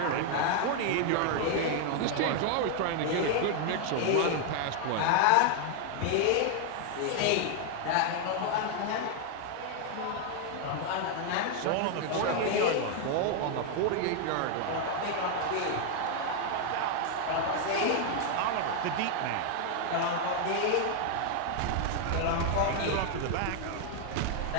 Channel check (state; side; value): different; both; correlation 0.00